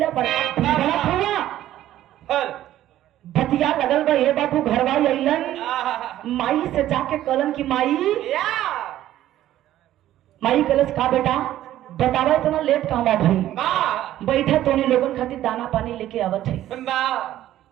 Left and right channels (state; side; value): quieter; left; 13.2 dB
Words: बड़ा हुआ बतिया लगल बा। ये बाबू घरवा अइलन, माई से जाके कलन की माई कलश का बेटा बतावा इतना लेट कहवा भाई, बैठा तोने लोगन खातिर दाना पानी लेके आवत है।